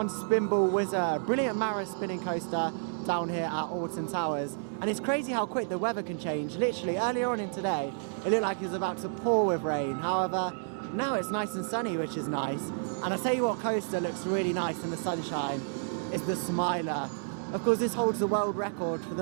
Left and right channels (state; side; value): silent; left; digital silence